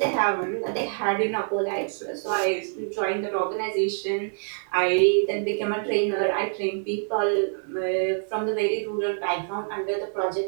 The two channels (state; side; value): silent; left; 59 dB below the other